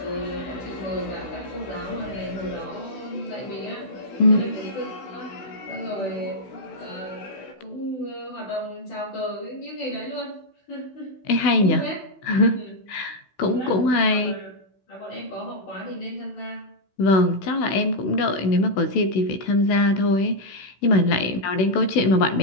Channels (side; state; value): right; late; 16 ms